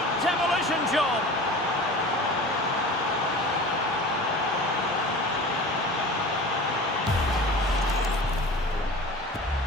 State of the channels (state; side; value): normal; both; correlation 0.37